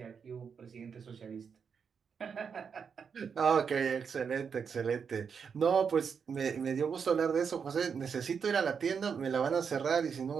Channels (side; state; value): left; quieter; 6.4 dB